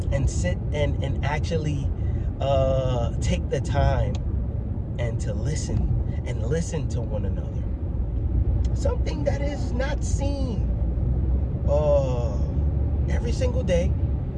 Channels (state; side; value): identical; both; correlation 1.00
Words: and sit and actually take the time and to listen to one another. Something that is not seen every single day